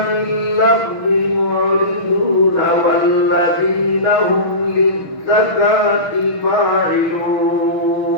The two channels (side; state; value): right; late; 6.3 ms